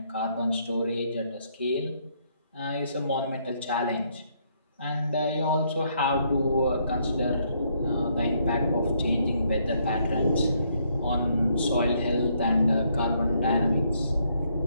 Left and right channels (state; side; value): inverted; both; correlation -0.72